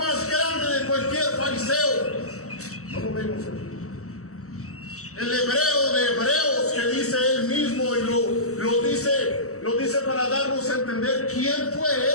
grande de cualquier fariseo. No lo vemos aquí. El hebreo de hebreos, que dice él mismo, y lo dice para darnos a entender quién fue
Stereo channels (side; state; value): right; late; 0.64 ms